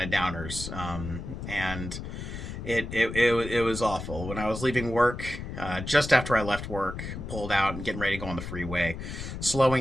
of downers, and it was awful. When I was leaving work, just after I left work, pulled out and getting ready to go on the freeway,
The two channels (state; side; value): noise; left; rumble, 8 dB below the sound